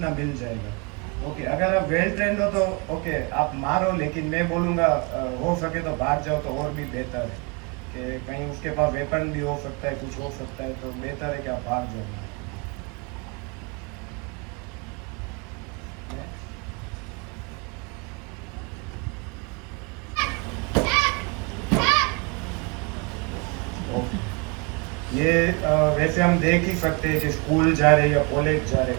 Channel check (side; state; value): left; quieter; 30.0 dB